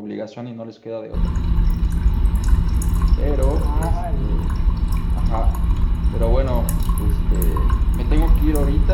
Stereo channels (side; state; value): both; identical; correlation 1.00